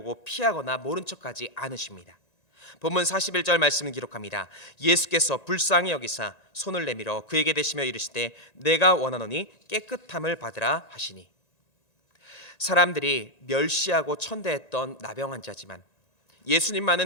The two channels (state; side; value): late; right; 1.9 ms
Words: 피하거나 모른 척하지 않으십니다. 본문 41절 말씀을 기록합니다. 예수께서 불쌍히 여기사 손을 내밀어 그에게 대시며 이르시되 내가 원하노니 깨끗함을 받으라 하시니. 사람들이 멸시하고 천대했던 나병 환자지만